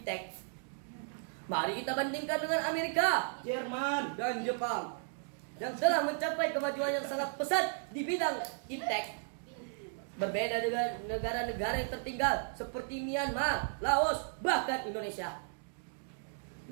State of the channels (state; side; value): silent; left; digital silence